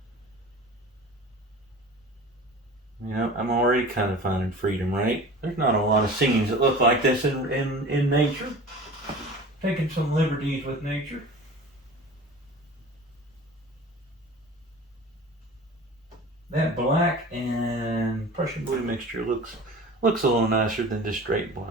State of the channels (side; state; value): both; normal; correlation 0.39